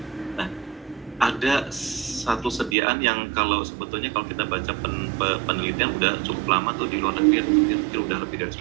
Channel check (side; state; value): left; drops out; at 2.8 s